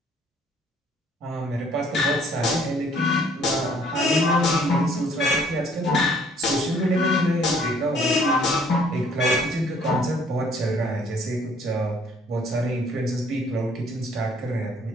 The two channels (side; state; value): both; normal; correlation 0.61